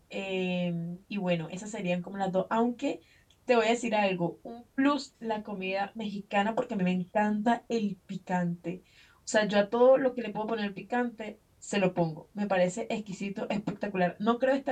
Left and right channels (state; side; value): identical; both; correlation 1.00